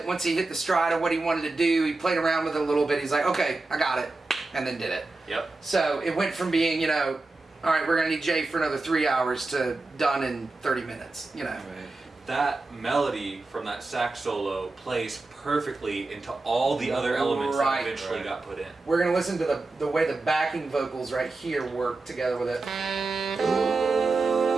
once he hit the stride of what he wanted to do, he played around with it a little bit. He's like, okay, I got it, and then did it. Yep. So it went from being, all right, we're gonna need Jay for another 3 hours to done in 30 minutes. That melody from that sax solo plays perfectly into all the other elements Right. that eventually got put in. We're gonna listen to the way the backing vocals right here work together with it.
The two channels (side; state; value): left; quieter; 3.4 dB